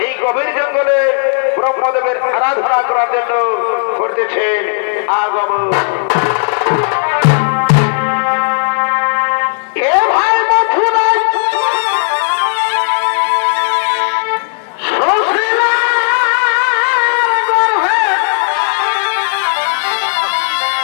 এই গভীর জঙ্গলে ব্রহ্মদেবের আরাধনা করার জন্য করতেছেন আগমন। এ ভাই মথুরায়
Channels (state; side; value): silent; right; digital silence